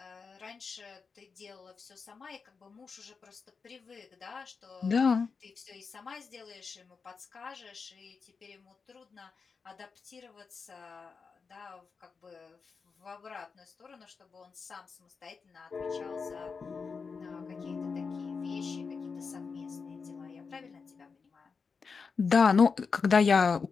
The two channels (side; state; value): right; quieter; 5.1 dB